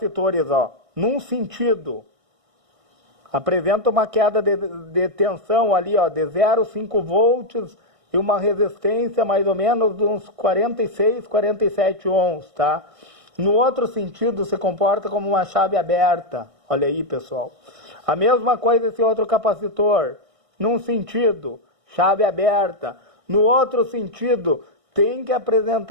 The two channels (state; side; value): late; left; 1.6 ms